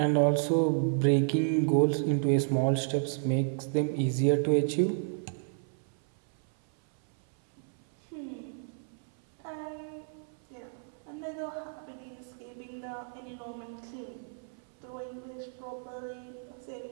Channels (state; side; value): silent; left; 57 dB below the other